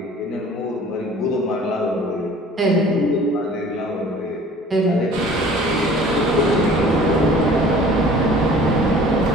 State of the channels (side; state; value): both; normal; correlation 0.49